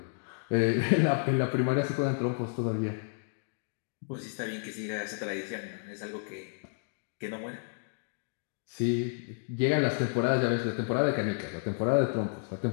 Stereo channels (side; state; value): right; silent; digital silence